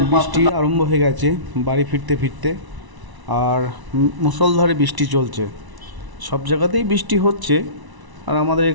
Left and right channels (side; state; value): left; late; 1.0 ms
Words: বৃষ্টি আরম্ভ হয়ে গেছে বাড়ি ফিরতে ফিরতে, আর মুষলধারে বৃষ্টি চলছে। সব জায়গাতেই বৃষ্টি হচ্ছে, আর আমাদের